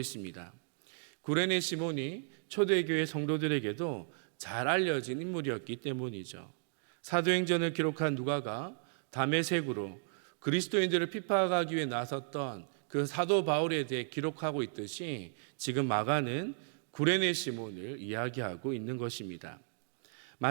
구레네 시몬이 초대교회 성도들에게도 잘 알려진 인물이었기 때문이죠. 사도행전을 기록한 누가가 다메섹으로 그리스도인들을 핍박하기 위해 나섰던 그 사도 바울에 대해 기록하고 있듯이 지금 마가는 구레네 시몬을 이야기하고 있는 것입니다.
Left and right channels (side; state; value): left; silent; digital silence